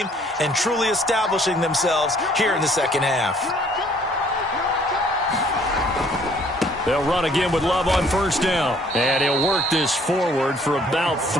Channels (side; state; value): both; normal; correlation 0.60